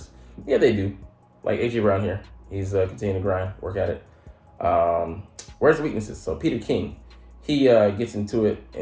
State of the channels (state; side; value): identical; both; correlation 1.00